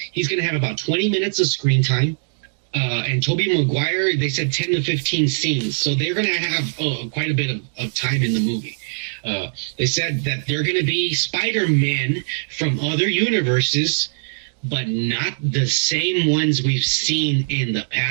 he's going to have about 20 minutes of screen time. And Tobey Maguire, they said 10 to 15 scenes. So they're going to have quite a bit of time in the movie. They said that they're going to be Spider-Man from other universes, but not the same ones we've seen in the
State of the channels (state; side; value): silent; left; digital silence